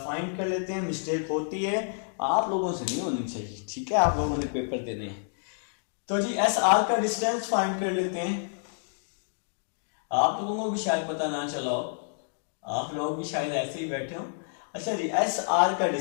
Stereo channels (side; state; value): right; silent; digital silence